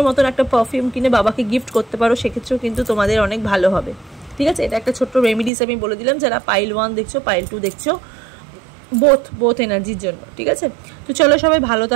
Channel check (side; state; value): left; drops out; at 5.5 s